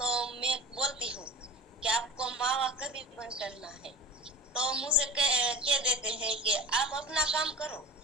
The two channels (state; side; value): normal; both; correlation 0.34